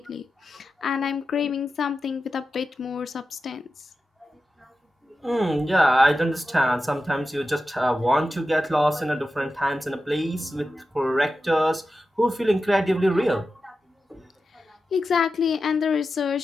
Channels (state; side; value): normal; both; correlation 0.91